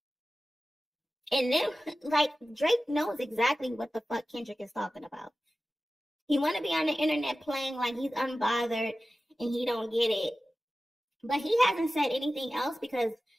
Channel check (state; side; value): normal; both; correlation 0.95